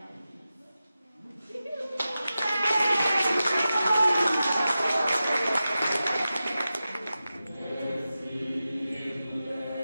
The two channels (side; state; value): both; inverted; correlation -0.93